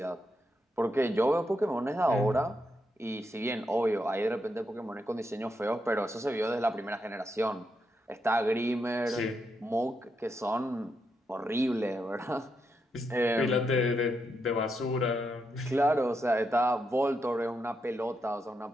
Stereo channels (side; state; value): both; normal; correlation 0.82